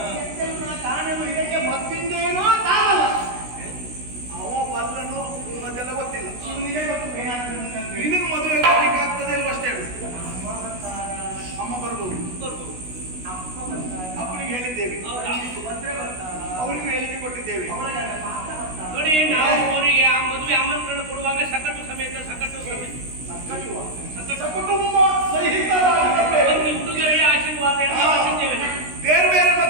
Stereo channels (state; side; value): late; left; 16 ms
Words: ಕಾಣಲು ಇದಕ್ಕೆ ಮತ್ತಿಂದೇನೋ ತಾವಲ್ಲ. ಅವ ಬಲ್ಲನು ಅದೆಲ್ಲ ಗೊತ್ತಿಲ್ಲ. ಇವನಿಗೆ ಗೊತ್ತು ಏನಾಗ್ತದೆ. ನಿನಗೆ ಮದುವೆ ಮಾಡ್ಲಿಕ್ಕೆ ಆಗ್ತದೆ ಅಲ್ವ ಅಷ್ಟೇ ಹೇಳು. ಅಮ್ಮ ಬರ್ಬೋದು, ಅಪ್ಪನಿಗೆ ಹೇಳಿದ್ದೇವೆ, ಅವರಿಗೂ ಹೇಳಿಕೆ ಕೊಟ್ಟಿದ್ದೇವೆ. ನೋಡಿ, ನಾವು ಅವರಿಗೆ ಆ ಮದುವೆ ಆಮಂತ್ರಣ ಕೊಡುವಾಗ ಸಕಟು ಸಮೇತ ಕುಟುಂಬ ಸಹಿತರಾಗಿ ಒಂದು ಹುಡುಗರಿಗೆ ಆಶೀರ್ವಾದ ಎಲ್ಲ ಮಾಡಿದ್ದೇವೆ. ಬೇರೆ ಬೇರೆ